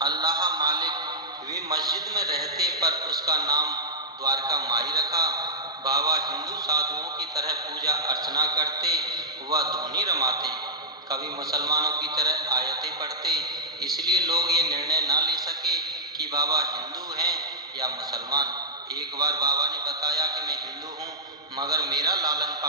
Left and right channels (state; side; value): normal; both; correlation -0.11